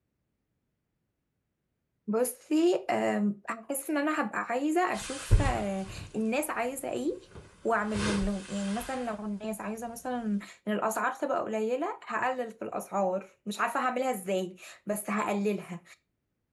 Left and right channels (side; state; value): both; identical; correlation 1.00